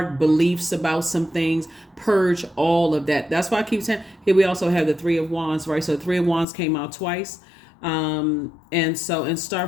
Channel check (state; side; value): drops out; right; at 6.5 s